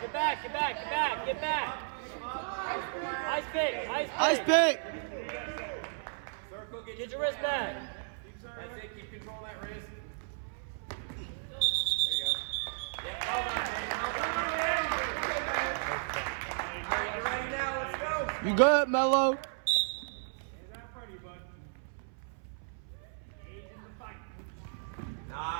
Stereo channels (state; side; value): silent; left; 55 dB below the other